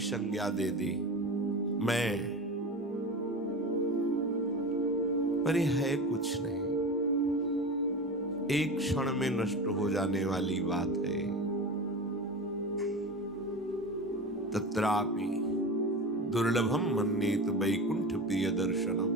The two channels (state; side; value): normal; both; correlation 0.28